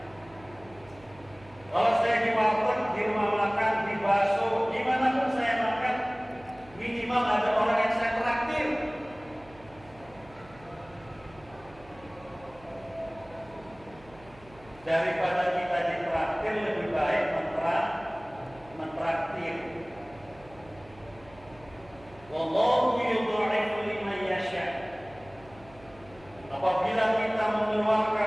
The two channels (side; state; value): right; noise; hum, 23 dB below the sound